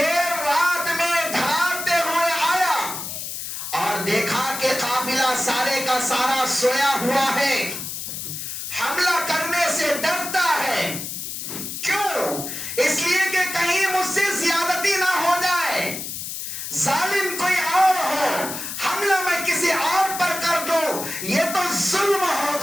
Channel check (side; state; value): left; noise; hiss, 6 dB below the sound